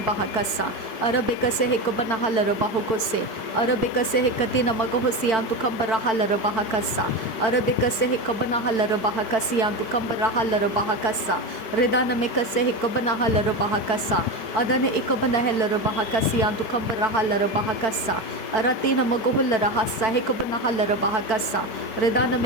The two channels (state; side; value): late; right; 4.5 ms